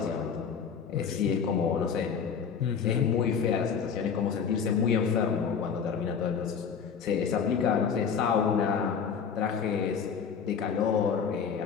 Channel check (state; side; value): quieter; right; 6.7 dB